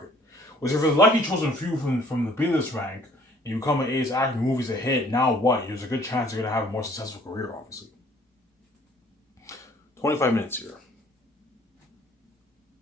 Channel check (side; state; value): both; normal; correlation 0.57